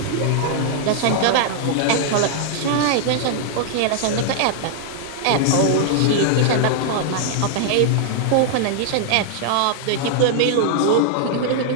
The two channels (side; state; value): both; different; correlation -0.01